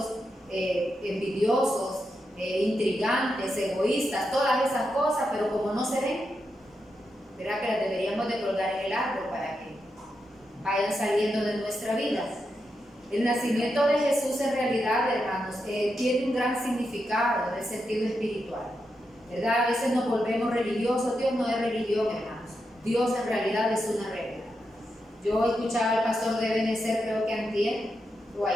envidiosos, intrigantes, egoístas, todas esas cosas, pero como no se ven, ¿verdad? Que las deberíamos de colgar en el árbol para que vayan saliendo de nuestra vida. El nacimiento de Jesús en realidad, hermanos, tiene un gran significado en el sentido espiritual, ¿verdad? A veces nos volvemos religiosos. Dios no es religión, hermanos. Dios en realidad es una regla. Yo escuchaba al pastor de Benecer, creo que antier o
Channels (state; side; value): normal; both; correlation 0.86